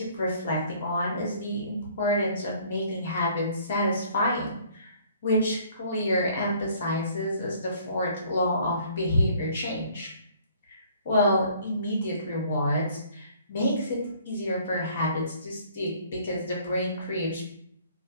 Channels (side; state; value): both; inverted; correlation -0.57